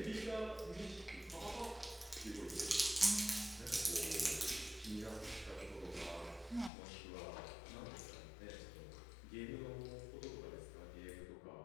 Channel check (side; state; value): right; drops out; at 6.7 s